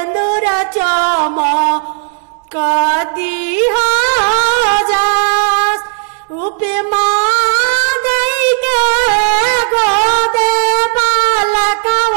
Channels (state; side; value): silent; left; 66 dB below the other